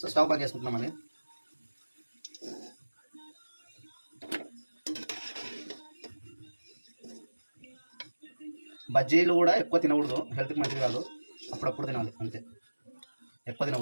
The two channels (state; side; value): inverted; both; correlation -1.00